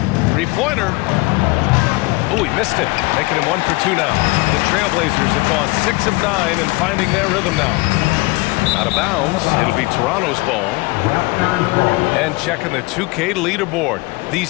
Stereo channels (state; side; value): quieter; right; 24.0 dB